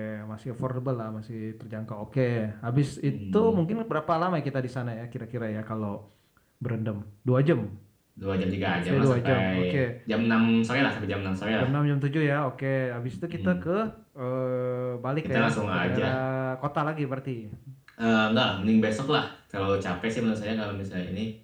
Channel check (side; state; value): both; identical; correlation 1.00